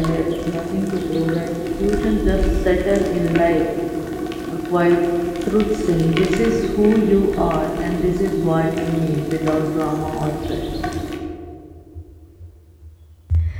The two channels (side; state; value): both; identical; correlation 1.00